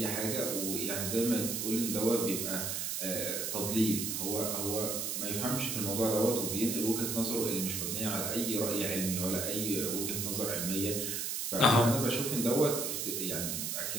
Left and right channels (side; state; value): right; noise; hiss, 2 dB below the sound